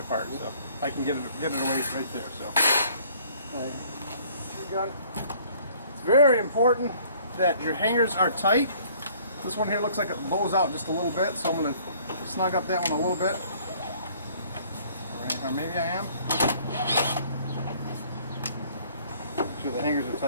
So I can get it away right there. So, gun. It's very important that your hangers are tight. This one here looks like it bows out just a little bit, so I'm going to snug up that one a little bit. Or maybe I am. Make sure the hangers are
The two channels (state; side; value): inverted; both; correlation -0.57